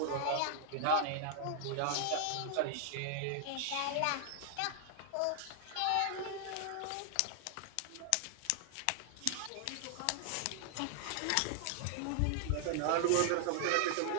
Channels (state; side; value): different; both; correlation 0.00